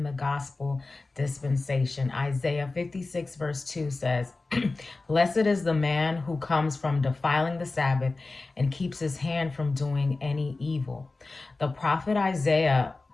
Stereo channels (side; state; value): right; quieter; 3.5 dB